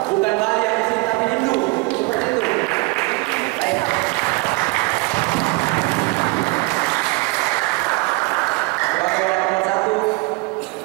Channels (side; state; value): left; quieter; 25.6 dB